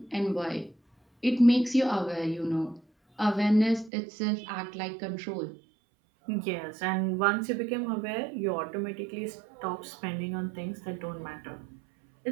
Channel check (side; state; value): left; drops out; at 3.9 s